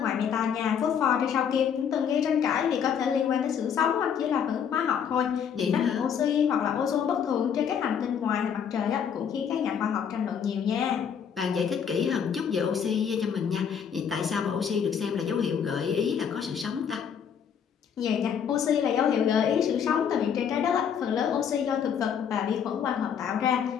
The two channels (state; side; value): quieter; right; 7.8 dB